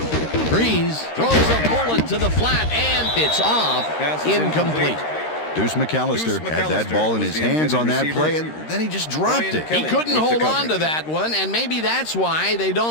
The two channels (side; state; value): right; late; 13 ms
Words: Breeze throws a bullet to the flat, and it's off. Incomplete. Deuce McAllister had that ball in his hands on that play, and then he just dropped it. He couldn't hold on to that one, and maybe that's why they